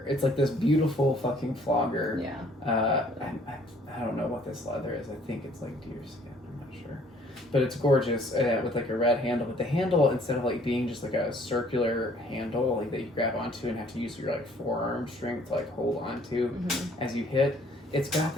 It's like this beautiful fucking flogger. Yeah. I don't know what this leather is. I think it's like deer skin. I'm not sure, but it's gorgeous with like a red handle. But the handle, instead of like being just like a circular handle like that you grab onto and have to use your like forearm strength to like hold onto as you hit, it's got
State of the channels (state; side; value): normal; both; correlation 0.59